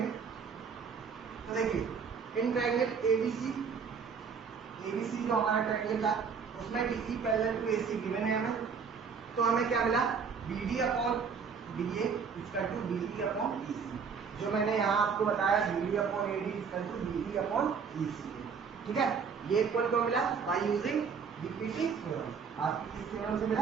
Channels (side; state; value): left; quieter; 6.0 dB